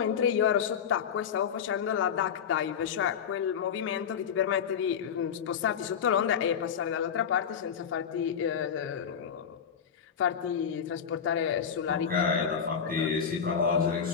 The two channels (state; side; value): quieter; right; 7.6 dB